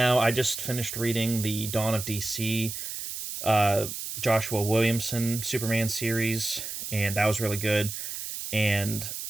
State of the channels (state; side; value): noise; right; hiss, 6 dB below the sound